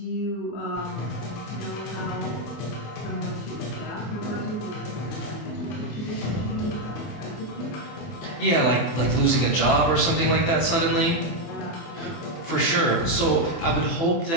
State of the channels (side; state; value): right; late; 24 ms